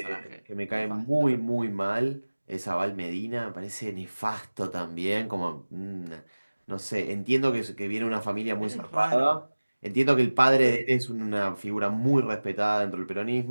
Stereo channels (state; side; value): inverted; both; correlation -1.00